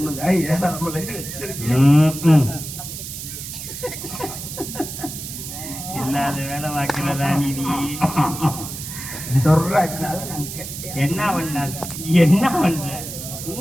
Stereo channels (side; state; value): right; noise; hiss, 9 dB below the sound